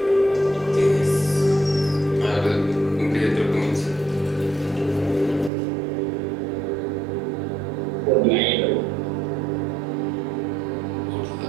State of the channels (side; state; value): left; drops out; at 5.5 s